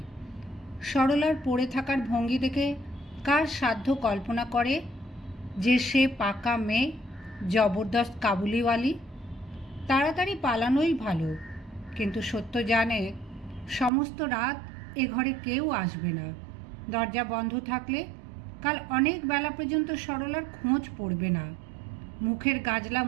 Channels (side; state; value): left; drops out; at 13.9 s